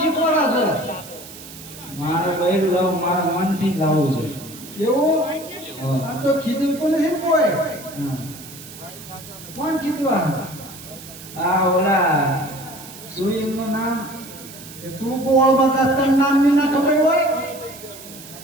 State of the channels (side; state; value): right; noise; hiss, 16 dB below the sound